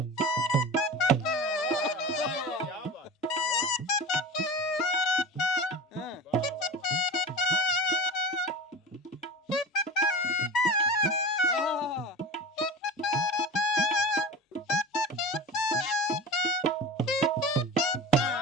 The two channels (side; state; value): both; normal; correlation 0.31